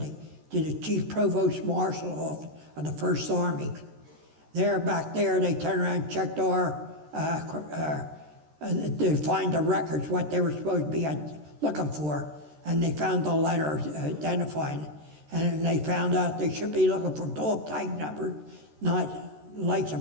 to the Chief Provost Marshal of the First Army. Back there, they turned around and checked our, to find the records, what they were supposed to be looking for, and they found the letter identifying it. And they found out they should be looking for dog tag numbers, not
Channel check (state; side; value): late; left; 13 ms